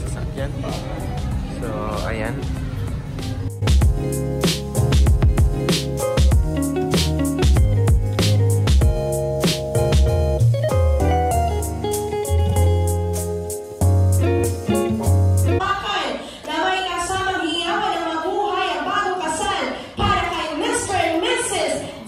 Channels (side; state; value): both; identical; correlation 1.00